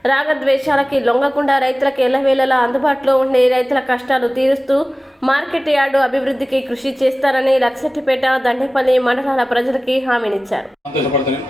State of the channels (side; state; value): both; normal; correlation 0.97